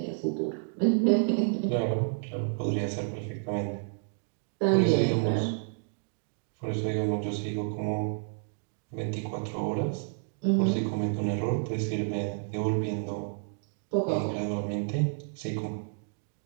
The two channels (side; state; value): left; silent; digital silence